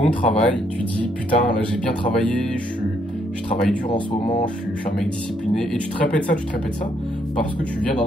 travail, tu dis putain, là j'ai bien travaillé, je travaille dur en ce moment, je suis un mec discipliné. Et tu te répètes ça parce que tu viens d'en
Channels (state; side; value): normal; both; correlation 0.72